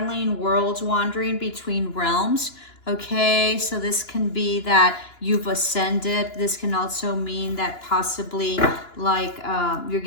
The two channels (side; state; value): right; late; 2.9 ms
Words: worlds, wandering between realms. Okay, so this can be that you've ascended. This can also mean that possibly like you're